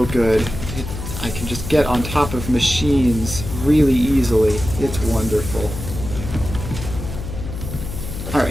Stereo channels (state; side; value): noise; left; hum, 7 dB below the sound